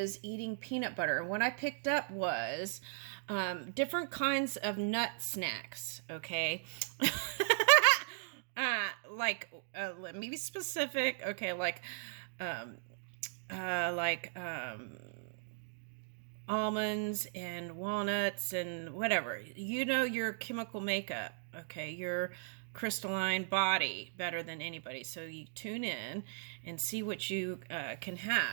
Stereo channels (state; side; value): silent; left; digital silence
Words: eating peanut butter. And what I picked up was different kinds of nut snacks, okay? Let me be specific. Okay, um, like almonds and walnuts and whatever. You know your chemical makeup, okay? Your crystalline body better than anybody. So you tune in and see what you can